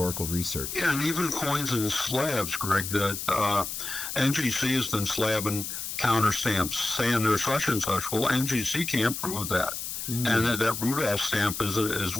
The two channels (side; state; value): left; noise; hiss, 6 dB below the sound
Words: research. Yeah, and even coins and slabs, Greg, that NGC has been slabbing counterstamps, saying they're such and such. Well, NGC can't prove that. And that Rudolph stamp is